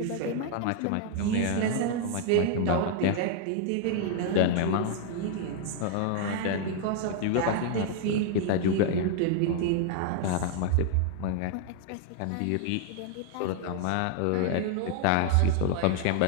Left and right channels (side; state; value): both; different; correlation 0.00